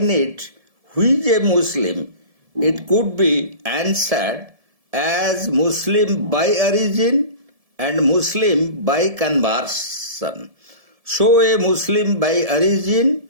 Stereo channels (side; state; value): left; late; 1.7 ms